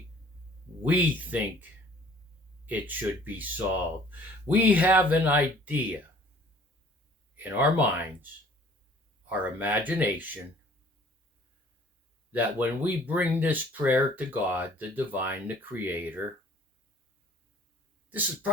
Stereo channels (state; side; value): normal; both; correlation 0.54